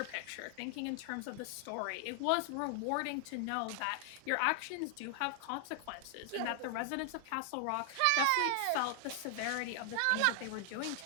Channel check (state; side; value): different; both; correlation 0.00